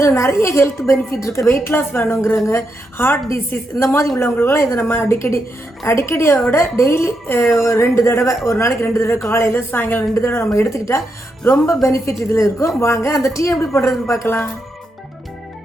நிறைய ஹெல்த் பெனிஃபிட் இருக்கு. வெயிட் லாஸ் வேணுங்கிறவங்க, ஹார்ட் டிசீஸ் இந்த மாதிரி உள்ளவங்களுக்குலாம் இதை நம்ம அடிக்கடியோட டெய்லி 2 தடவை, ஒரு நாளைக்கு 2 தடவை, காலையில் சாயங்காலம் 2 தடவை நம்ம எடுத்துக்கிட்டா ரொம்ப பெனிஃபிட் இதில் இருக்கும். வாங்க அந்த டீ எப்படி பண்ணுறதுன்னு பார்க்கலாம்.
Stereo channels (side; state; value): both; normal; correlation 0.83